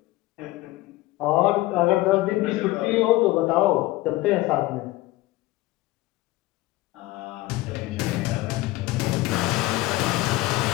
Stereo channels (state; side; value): quieter; right; 18.3 dB